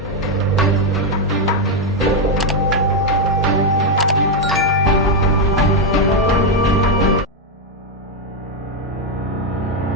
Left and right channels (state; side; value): normal; both; correlation 0.04